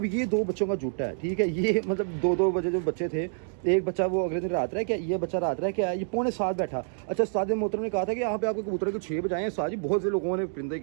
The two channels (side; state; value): left; silent; digital silence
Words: ये 2 बच्चों का जुटा है, ठीक है, ये मतलब 2-2 बजे जो बच्चे थे, एक बच्चा वो अगले दिन रात रह क्या, ये बच्चा रात रह क्या, ये 6:45 बैठा। अच्छा, उस्ताद मोहतरम ने कहा था कि यहाँ पे आपके कबूतर को 6 बजे आए हैं। उस्ताद जी, बहुत से लोगों ने परिंदे